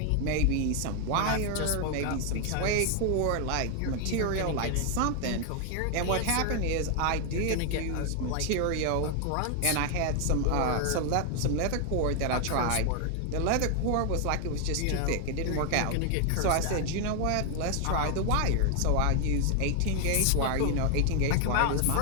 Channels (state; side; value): different; both; correlation 0.00